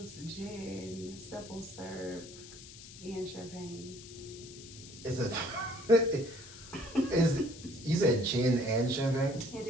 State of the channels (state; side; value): noise; left; hiss, 16 dB below the sound